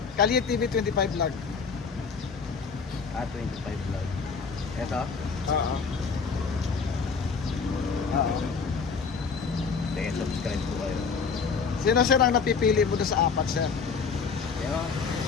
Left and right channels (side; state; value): right; quieter; 5.4 dB